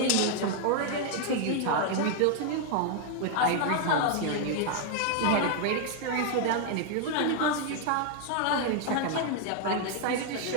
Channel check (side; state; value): both; different; correlation 0.00